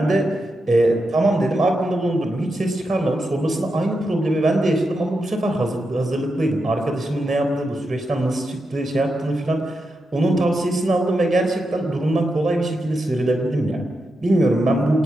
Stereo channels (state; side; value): normal; both; correlation 0.87